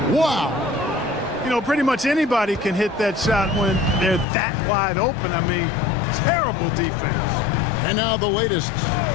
Wow. You know, pretty much anybody can hit that shot when they're that wide open. I mean, terrible defense. And now the latest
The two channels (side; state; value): right; drops out; at 4.2 s